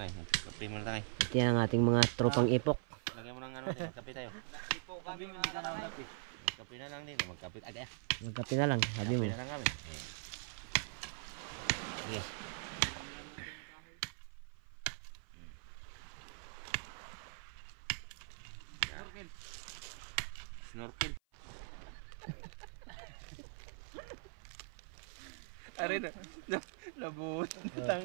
kape mo na tangay. Ito yan ang ating mga tropang ipok. Lagyan mo ng ano, kape tayo. Ipo kami, hindi ka na kape. Magkape na lang din, magkape agad. Magkape na lang, sabi mo. Kape na lang kami. Sige. Snorkel. Ari na, nabuhos na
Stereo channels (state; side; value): silent; left; 50 dB below the other